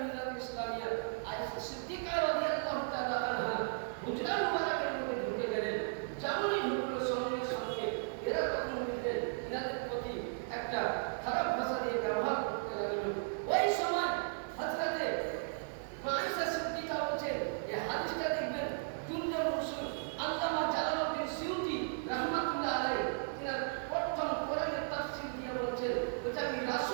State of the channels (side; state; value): left; silent; digital silence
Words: মিল্লাত ইসলামিয়া। আয়েশা সিদ্দিকা রাদিয়াল্লাহু তাআলা আনহা হুজরা মুবারাকের মধ্যে ঢুকে গেলেন। যেমনই ঢুকলো সঙ্গে সঙ্গে এরা তখন এনাদের প্রতি একটা খারাপ ভাষা দিয়ে ব্যবহার করতে লাগলো। ওই সময় হযরতে আয়েশা সিদ্দিকা বলছেন, এই হাদিসটা দেখবেন জুনজুল রসুল আল্লামা জালালউদ্দিন সিউতি রাহমাতুল্লাহ আলাইহি তিনার প্রথম কোরআনের তাফসীর দিয়ে বলছেন, এটা আমি